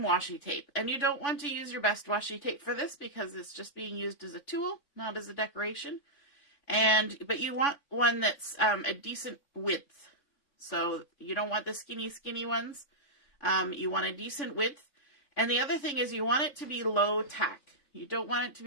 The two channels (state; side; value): late; right; 3.5 ms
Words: washi tape, and you don't want to use your best washi tape for this because it's just being used as a tool, not as a decoration. But you want one that's a decent width. So you don't want the skinny ones. You want a decent width. And the other thing is you want it to be low tack. You don't want it to